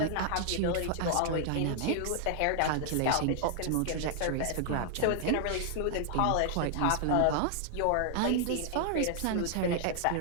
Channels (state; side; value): different; both; correlation 0.00